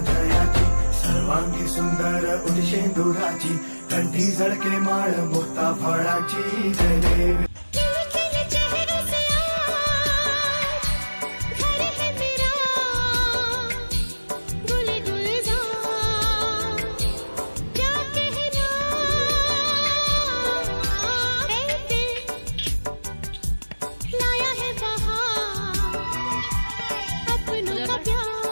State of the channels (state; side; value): inverted; both; correlation -1.00